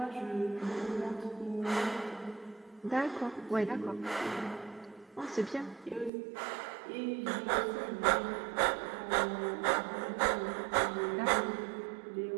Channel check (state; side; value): drops out; left; at 6.1 s